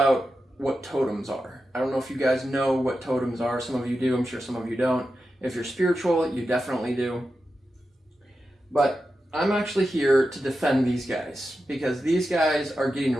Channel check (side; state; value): both; normal; correlation 0.90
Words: what totems are. I don't know if you guys know what totems are. Some of you do. I'm sure some of you don't. If you're spiritual, you definitely do. But I'm actually here to defend these guys because these guys are getting a